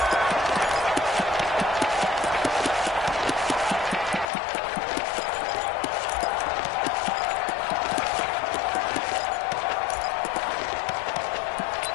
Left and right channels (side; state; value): right; drops out; at 4.3 s